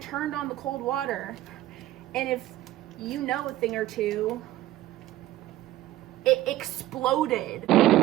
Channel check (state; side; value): quieter; left; 15.1 dB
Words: on the cold water. And if you know a thing or two, it exploded.